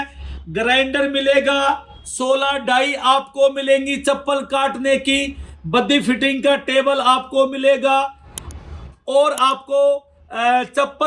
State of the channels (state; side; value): identical; both; correlation 1.00